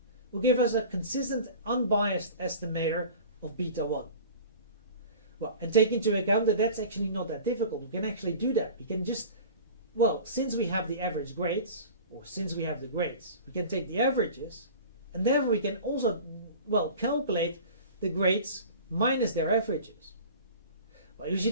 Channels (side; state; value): both; inverted; correlation -0.40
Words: will give us a consistent unbiased estimator of beta 1. Well, and take into account that that's actually not that difficult. We can actually do that. We can just, well, since we have the average grades, or since we have the grades, we can take the averages, and therefore we can also, well, calculate the grades minus their averages. Well, you